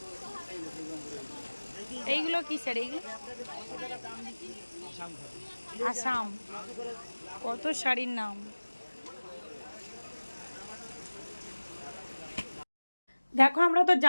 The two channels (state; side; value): inverted; both; correlation -1.00